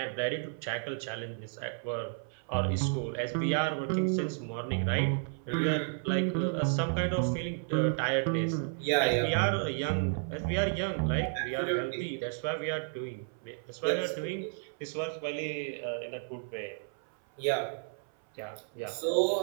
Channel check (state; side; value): silent; left; 56 dB below the other